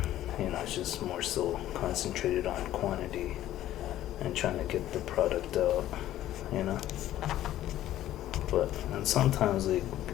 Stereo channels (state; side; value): quieter; right; 13.3 dB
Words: you know, it's just more so concentrated on quantity and trying to get the product out, you know. sometimes like,